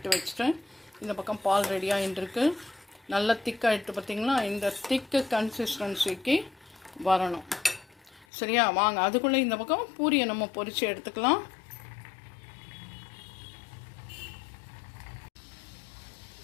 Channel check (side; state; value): right; drops out; at 8.2 s